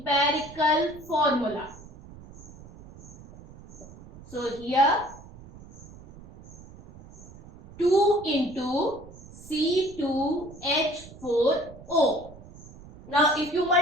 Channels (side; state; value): right; noise; rumble, 19 dB below the sound